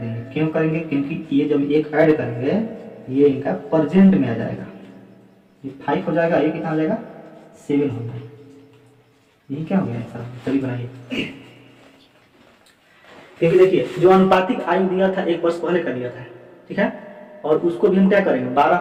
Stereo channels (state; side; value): identical; both; correlation 1.00